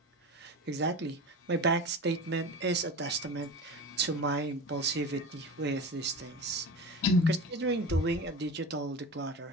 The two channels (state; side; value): normal; both; correlation 0.30